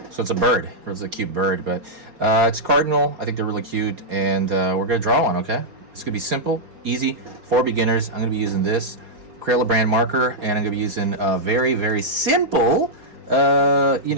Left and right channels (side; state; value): left; late; 4.8 ms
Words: So it's a bird. It's a cute bird, but it's cardinal. I think they're really cute, and we're going to draw one, okay? It's going to be simple, easy, for beginners. I'm going to be using this Crayola brand marker, and I'm going to be using very, very simple,